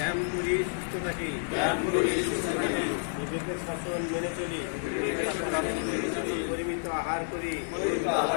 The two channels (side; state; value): right; silent; digital silence